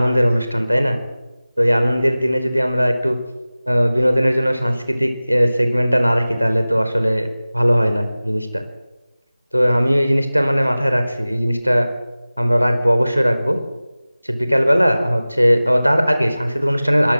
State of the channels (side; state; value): both; inverted; correlation -0.98